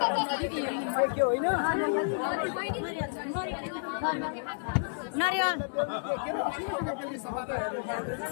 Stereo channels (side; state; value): right; silent; digital silence